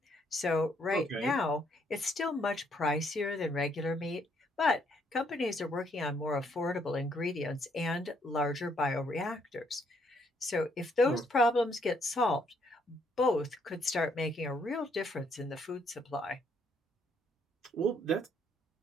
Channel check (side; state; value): both; normal; correlation 0.70